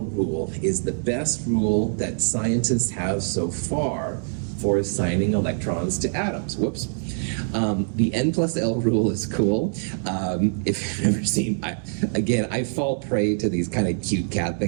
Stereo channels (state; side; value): silent; left; digital silence